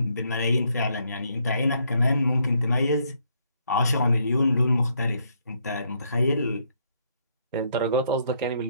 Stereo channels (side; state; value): both; inverted; correlation -0.72